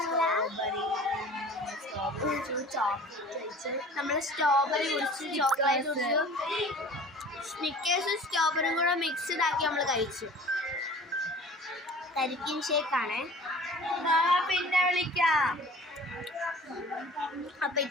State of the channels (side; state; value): both; normal; correlation 0.44